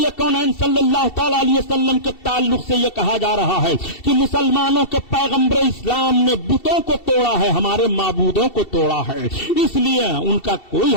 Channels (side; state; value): right; late; 2.7 ms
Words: کونین صلی اللہ تعالی علیہ وسلم کے تعلق سے یہ کہا جا رہا ہے کہ مسلمانوں کے پیغمبر اسلام نے بتوں کو توڑا ہے، ہمارے معبودوں کو توڑا ہے. اس لیے ان کا کوئی